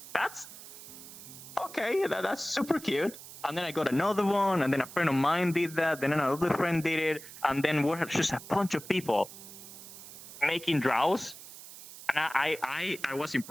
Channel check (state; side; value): noise; right; hiss, 15 dB below the sound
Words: that's okay, that's super cute. And then I got another one, and then a friend of mine did that, then another friend did it, and then we're just a bunch of people making drows, and I was